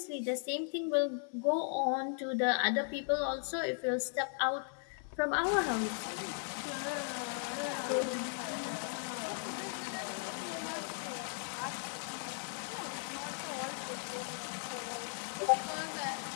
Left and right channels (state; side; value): silent; right; 53 dB below the other